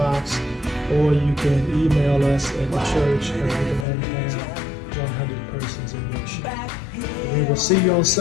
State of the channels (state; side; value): drops out; right; at 3.9 s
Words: or you can email us at the church, and we can only have 100 persons in worship. We will see you on